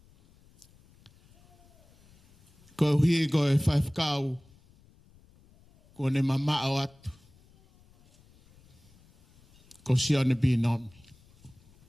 Koe hui koe whaifkau, koe ne mamao atu, ko sione binomi.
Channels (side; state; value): left; noise; rumble, 29 dB below the sound